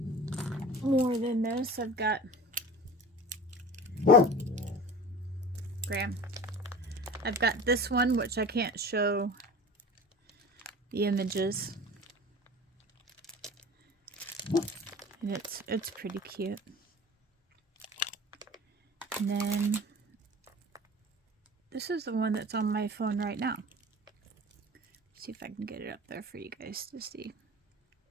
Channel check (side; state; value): both; normal; correlation 0.37